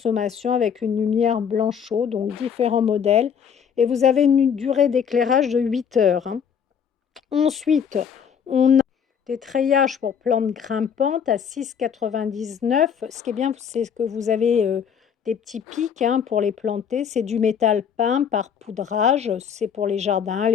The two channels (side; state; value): right; quieter; 7.5 dB